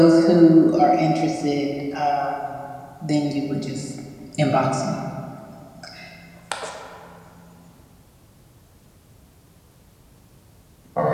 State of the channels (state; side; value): identical; both; correlation 1.00